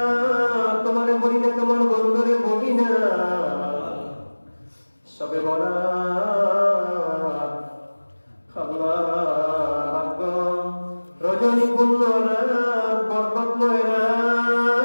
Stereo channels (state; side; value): inverted; both; correlation -1.00